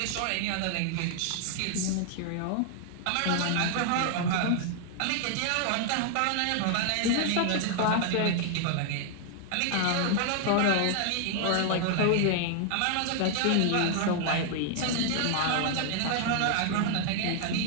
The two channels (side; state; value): both; different; correlation 0.00